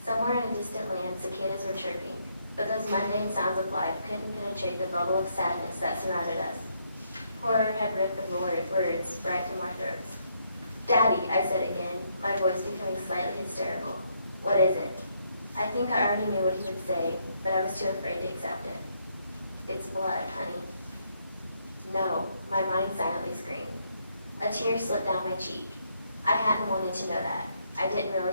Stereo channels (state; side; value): inverted; both; correlation -0.74